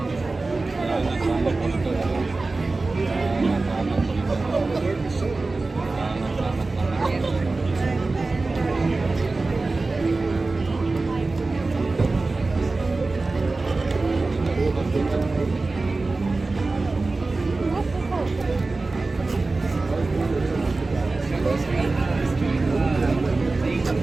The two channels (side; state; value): left; quieter; 3.5 dB